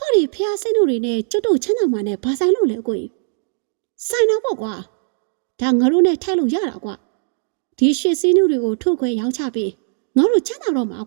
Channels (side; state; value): left; silent; digital silence